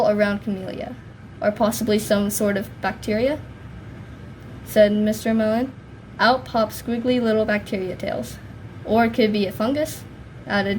around Camellia. Or possibly some sort of bacteria, said Mr. Mellon. Out popped squiggly little bacteria tails. Or it could be a fungus, added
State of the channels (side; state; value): both; identical; correlation 1.00